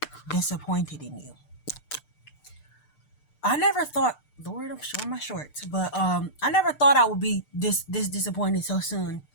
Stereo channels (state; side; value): late; right; 6.7 ms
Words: disappointed in you. I never thought, Lord, I'm showing my shorts, but I never thought I would be this disappointed so soon